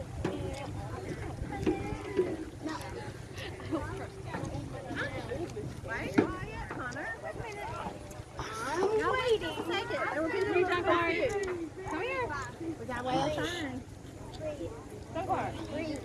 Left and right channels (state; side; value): identical; both; correlation 1.00